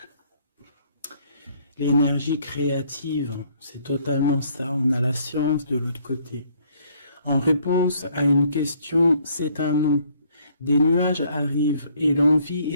L'énergie créative, c'est totalement ça. On a la science de l'autre côté. En réponse à une question, c'est un non. Des nuages arrivent et l'envie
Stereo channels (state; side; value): inverted; both; correlation -0.64